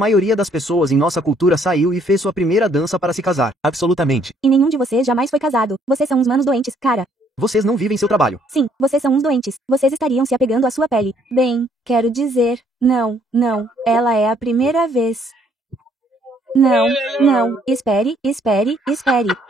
das pessoas em nossa cultura saiu e fez sua primeira dança para se casar. Absolutamente. E nenhum de vocês jamais foi casado. Vocês são uns manos doentes, cara. Vocês não vivem seu trabalho. Sim, vocês são uns doentes. Vocês estariam se apegando à sua pele. Bem, quero dizer, não, ela é a primeira vez. Não, espere.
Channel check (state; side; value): normal; both; correlation 0.66